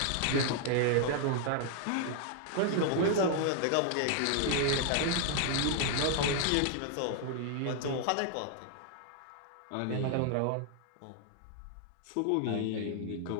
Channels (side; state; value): both; different; correlation 0.00